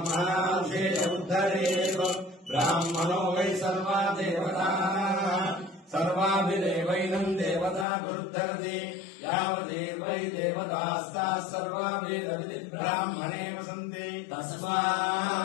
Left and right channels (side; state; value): right; drops out; at 7.9 s